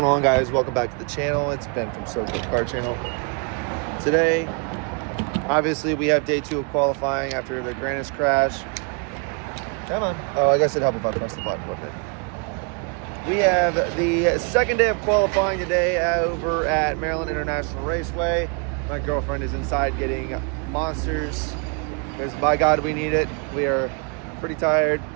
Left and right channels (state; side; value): quieter; left; 37.2 dB